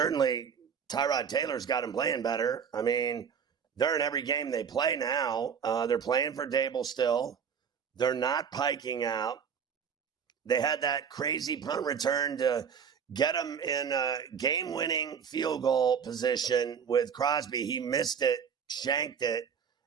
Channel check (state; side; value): quieter; left; 7.0 dB